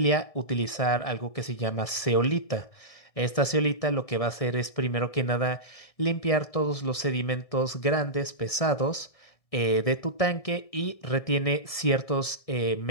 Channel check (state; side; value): late; right; 1.6 ms